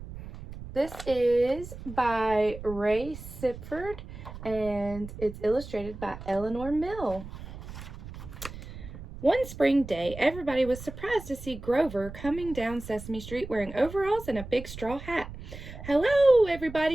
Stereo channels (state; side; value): noise; right; rumble, 12 dB below the sound